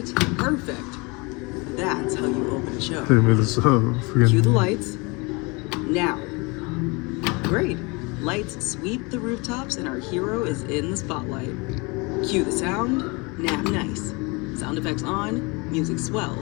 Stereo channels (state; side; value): quieter; right; 27.7 dB